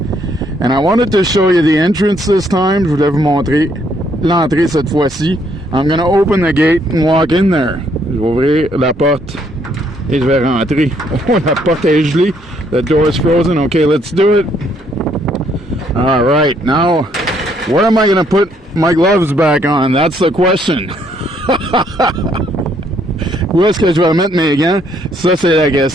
And I wanted to show you the entrance this time. Je voulais vous montrer l'entrée cette fois-ci. I'm gonna open the gate and walk in there. Je vais ouvrir la porte et je vais rentrer. Oh, la porte est gelée. The door is frozen. Okay, let's do it. All right, now, where am I gonna put my gloves back on? That's the question. Où est-ce que je vais mettre mes gants? Ça, c'est la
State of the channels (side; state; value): both; normal; correlation 0.69